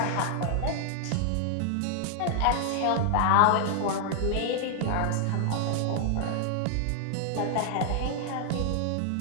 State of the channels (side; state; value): both; different; correlation 0.00